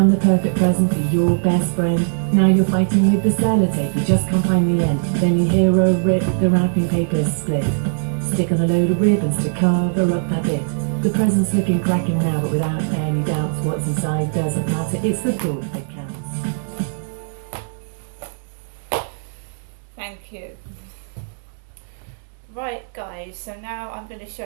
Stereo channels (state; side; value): silent; left; digital silence